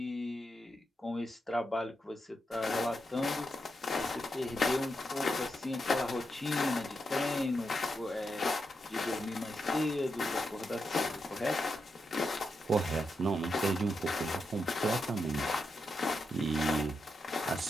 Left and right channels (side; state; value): both; normal; correlation 0.85